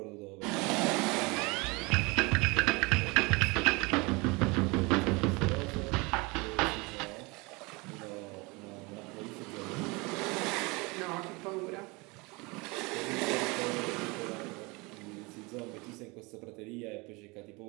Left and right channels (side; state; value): left; quieter; 26.3 dB